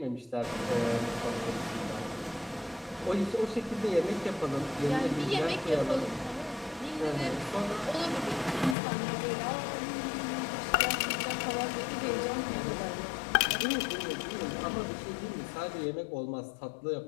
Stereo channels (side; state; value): right; drops out; at 8.8 s